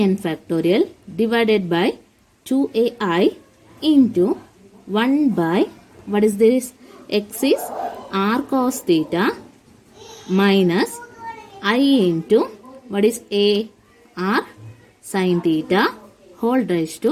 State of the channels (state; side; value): identical; both; correlation 1.00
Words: factorial divided by 2ai into 1 by, what is this? X is r cos theta minus I into, what is a? R sin theta whole raised